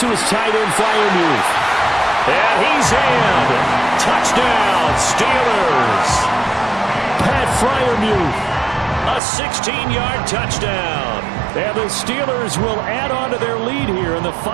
his tight end, Freiermuth. And he's in. Touchdown, Steelers. Pat Freiermuth. A 16-yard touchdown. And the Steelers will add on to their lead here in the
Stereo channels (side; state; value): left; drops out; at 9.2 s